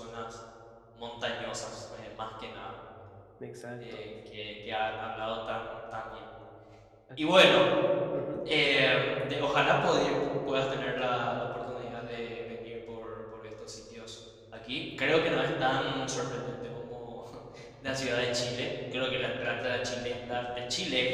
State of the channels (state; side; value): identical; both; correlation 1.00